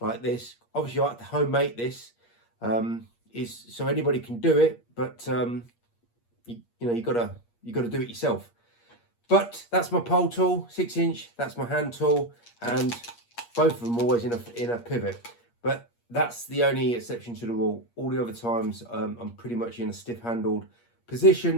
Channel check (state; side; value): late; right; 8.5 ms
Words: this. Obviously I like to homemade this, is so anybody can do it, but you know, you gotta do it yourself. But that's my pole tool, 6-inch, that's my hand tool, and both of them always in a pivot. But that's the only exception to the rule. All the other times I'm pretty much in a stiff handled